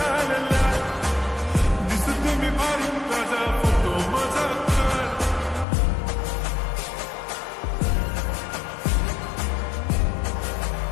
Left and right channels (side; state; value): right; drops out; at 5.7 s